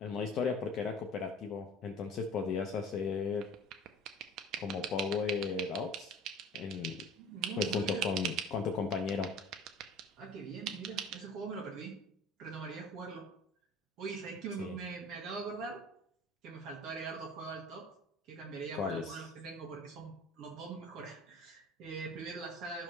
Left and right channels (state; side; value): normal; both; correlation 0.44